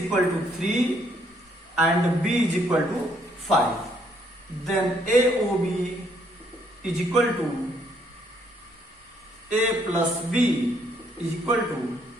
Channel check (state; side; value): normal; both; correlation 0.69